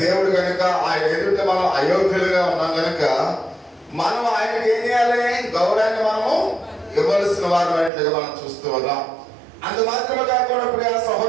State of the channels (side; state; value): left; drops out; at 7.9 s